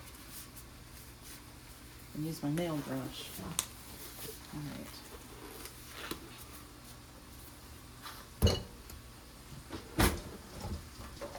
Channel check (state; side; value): identical; both; correlation 1.00